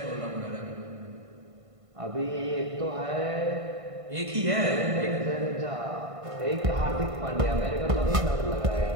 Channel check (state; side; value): late; left; 1.5 ms